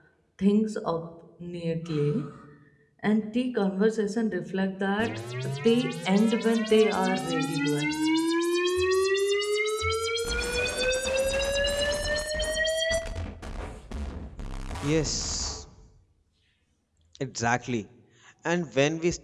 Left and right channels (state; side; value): identical; both; correlation 1.00